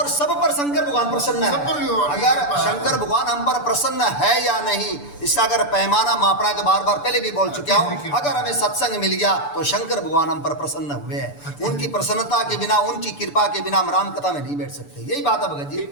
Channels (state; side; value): late; right; 6.9 ms